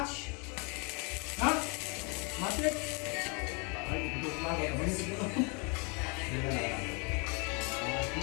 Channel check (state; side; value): quieter; right; 32.9 dB